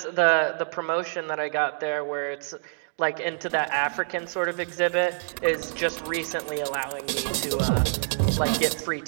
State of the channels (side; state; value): left; silent; digital silence